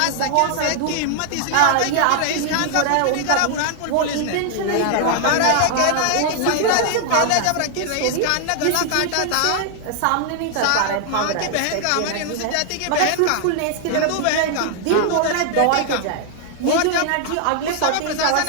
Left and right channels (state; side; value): different; both; correlation 0.00